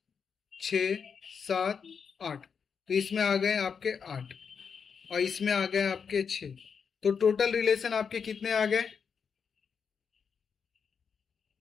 6 7 8, तो इसमें आ गए आपके 8 और इसमें आ गए आपके 6, तो टोटल रिलेशन आपके कितने आ गए,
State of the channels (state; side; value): quieter; right; 6.3 dB